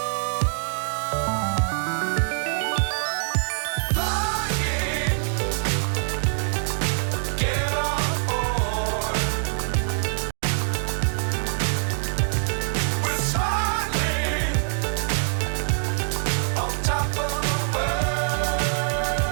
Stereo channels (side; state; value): left; silent; 58 dB below the other